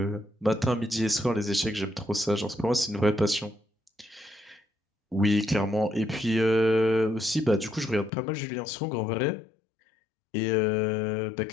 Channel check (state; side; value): drops out; right; at 8.1 s